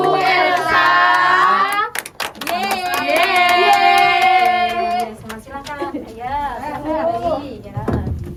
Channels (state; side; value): identical; both; correlation 1.00